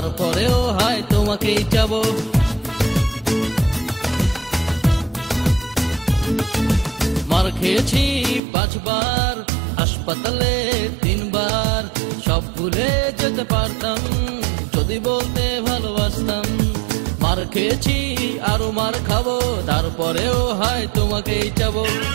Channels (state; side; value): drops out; left; at 8.4 s